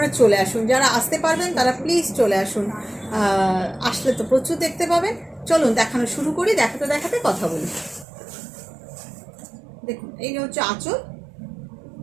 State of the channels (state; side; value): drops out; left; at 8.1 s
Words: চলে আসুন, যারা আসতে পারবেন তারা প্লিজ চলে আসুন। আসলে তো প্রচুর দেখতে পাবেন। চলুন দেখানো শুরু করি, দেখাতে দেখাতে কথা বলি। দেখুন, এই হচ্ছে আঁচল,